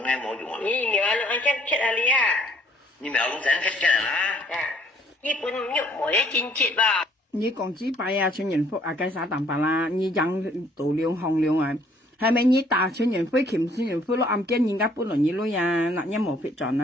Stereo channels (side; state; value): both; normal; correlation 0.62